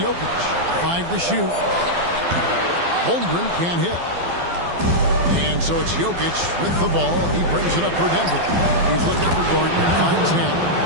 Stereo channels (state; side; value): late; left; 12 ms